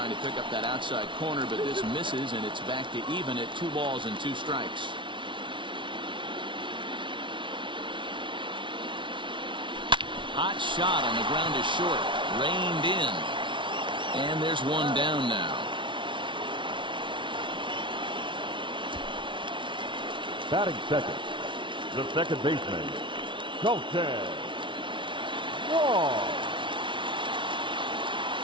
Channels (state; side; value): late; left; 0.24 ms